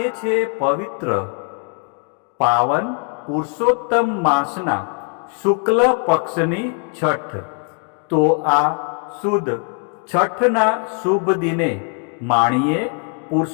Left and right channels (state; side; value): quieter; right; 38.8 dB